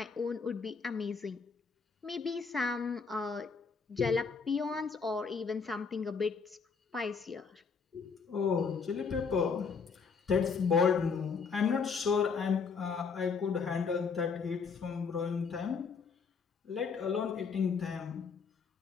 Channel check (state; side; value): quieter; right; 5.5 dB